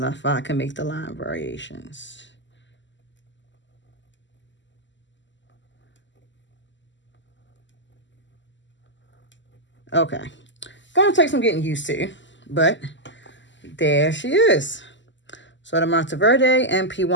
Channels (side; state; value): right; late; 0.54 ms